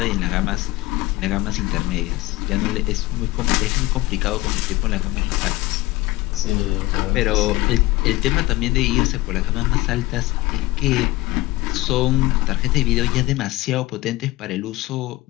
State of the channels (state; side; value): quieter; right; 19.3 dB